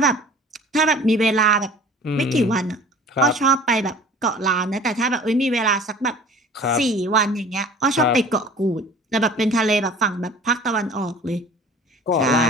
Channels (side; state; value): both; normal; correlation 0.45